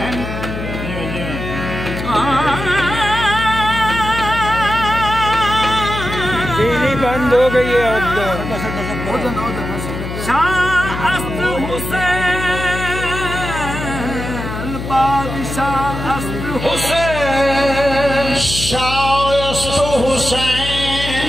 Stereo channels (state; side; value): noise; left; hum, 7 dB below the sound